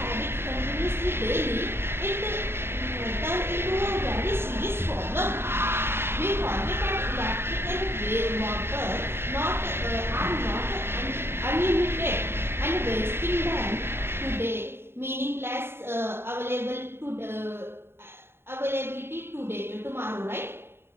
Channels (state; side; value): late; left; 0.11 ms